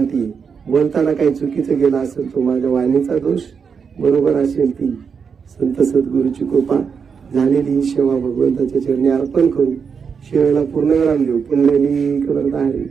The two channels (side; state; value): left; quieter; 6.2 dB